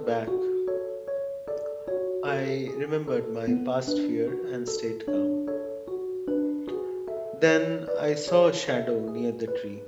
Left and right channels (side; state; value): both; identical; correlation 1.00